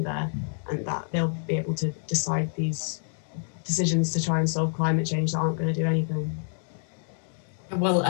there, and that they'll be able to decide these decisions to try and solve climate change that aren't going to do anything. Well,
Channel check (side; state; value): right; silent; digital silence